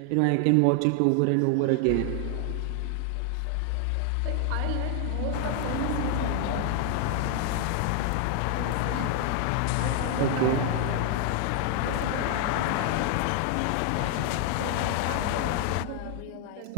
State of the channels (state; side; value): different; both; correlation 0.00